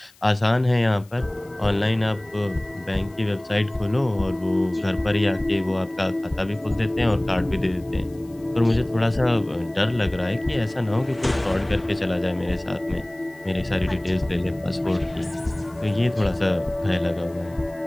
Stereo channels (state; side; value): noise; left; hiss, 29 dB below the sound